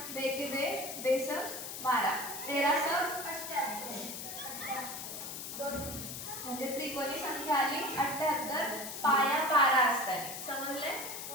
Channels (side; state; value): left; noise; hiss, 7 dB below the sound